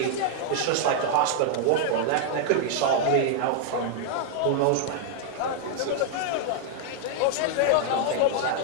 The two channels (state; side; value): different; both; correlation 0.00